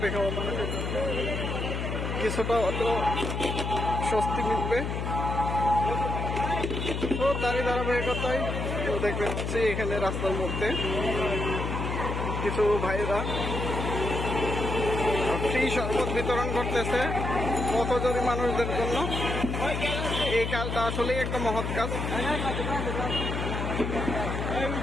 খাওয়া মানুষের জন্য কিছুটা হলেও স্বস্তি মিলবে। তো তারই ধারাবাহিকতায় দেখতে পাচ্ছি এখানে রাস্তার মধ্যে কিছু ভাইরা ফ্রি শরবত বিতরণ করতেছে পথচারী মানুষদের জন্য। এই কাজটা আসলেই একটা মহৎ কাজ।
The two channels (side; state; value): left; noise; hum, 3 dB below the sound